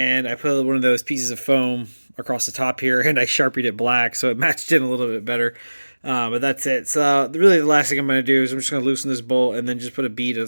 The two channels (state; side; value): inverted; both; correlation -1.00